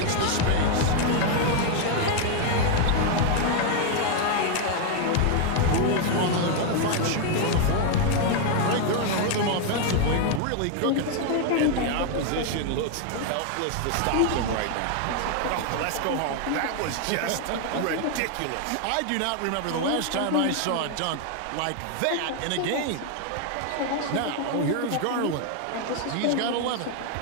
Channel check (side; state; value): both; different; correlation 0.00